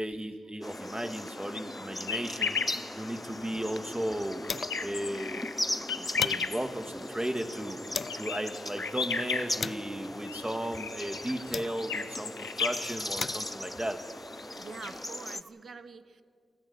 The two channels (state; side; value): normal; both; correlation 0.74